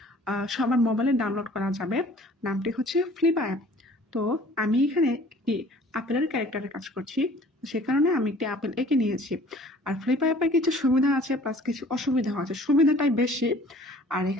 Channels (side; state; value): both; normal; correlation 0.51